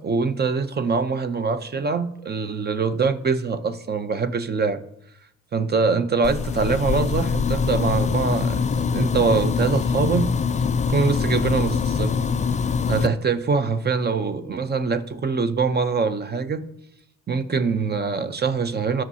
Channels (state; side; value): normal; both; correlation 0.47